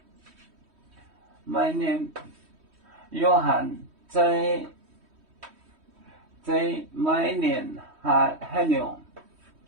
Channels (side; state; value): left; late; 3.1 ms